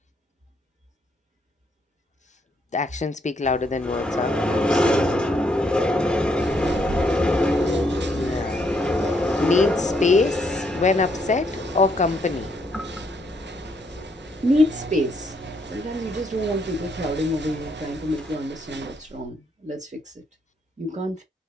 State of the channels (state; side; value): normal; both; correlation 0.73